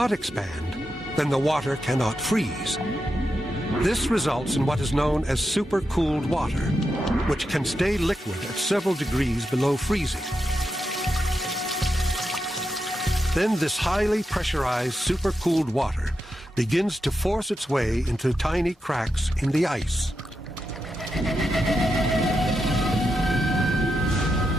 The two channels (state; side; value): normal; both; correlation 0.86